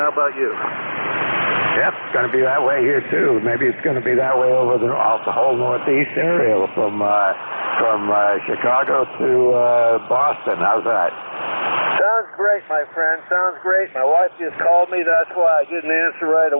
about you? Yep, it's going to be that way here too. Maybe it's going to be that way over the whole northeast area from Chicago to Boston. How's that? Sounds great, my friend. Sounds great. My wife just called me. That's why I didn't answer right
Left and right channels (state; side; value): inverted; both; correlation -1.00